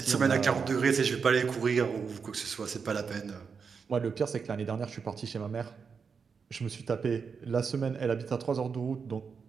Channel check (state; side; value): quieter; left; 5.8 dB